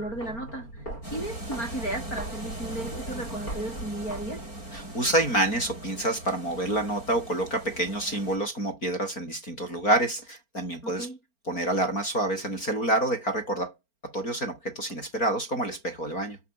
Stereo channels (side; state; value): right; late; 4.4 ms